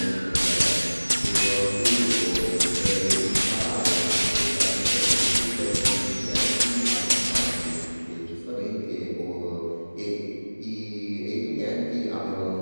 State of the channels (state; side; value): inverted; both; correlation -1.00